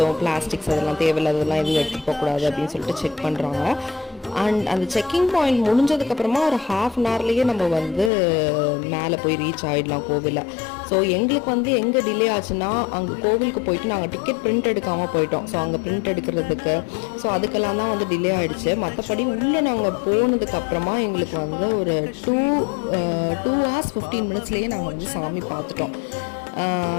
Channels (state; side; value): drops out; right; at 8.1 s